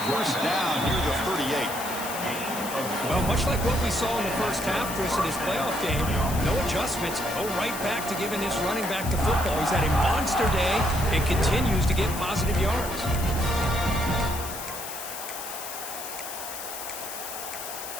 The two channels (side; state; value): left; noise; hiss, 8 dB below the sound